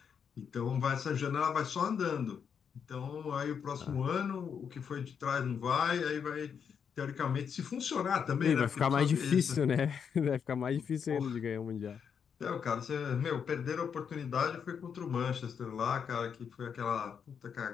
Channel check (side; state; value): right; quieter; 7.1 dB